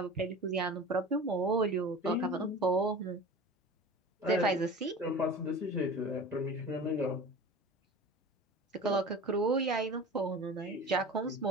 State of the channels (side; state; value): both; normal; correlation 0.37